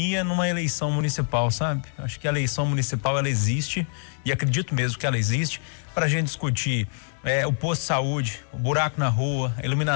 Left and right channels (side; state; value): right; silent; digital silence